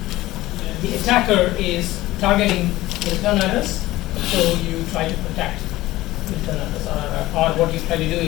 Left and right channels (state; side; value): quieter; right; 17.2 dB